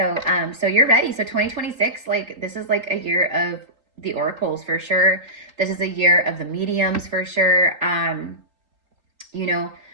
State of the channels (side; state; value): left; late; 3.8 ms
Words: so you're ready. So 2026, like this is like a year of the oracles for sure. This is a year of the mediums for sure. You know,